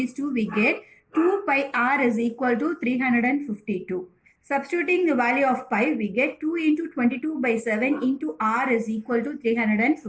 two, we get 2 pi r is equal to 352. Substituting the value of pi, we get 2 into 22 by 7 into r is equal to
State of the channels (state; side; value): identical; both; correlation 1.00